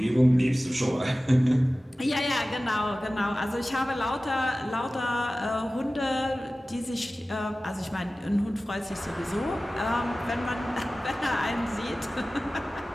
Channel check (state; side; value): normal; both; correlation 0.96